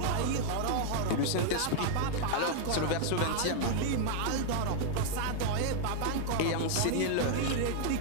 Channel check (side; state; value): both; different; correlation 0.00